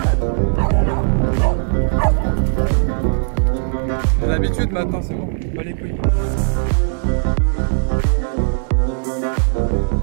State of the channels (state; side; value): silent; left; digital silence